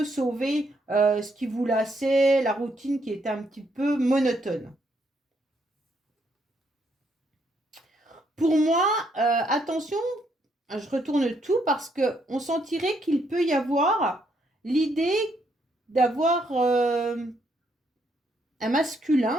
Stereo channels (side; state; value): both; normal; correlation 0.74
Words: sauver ce qui vous lassait, la routine qui était un petit peu monotone. Pour moi, attention, je retourne tout parce qu'on sentirait qu'il peut y avoir l'idée d'avoir un